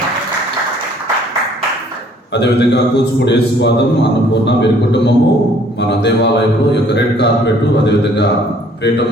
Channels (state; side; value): normal; both; correlation 0.59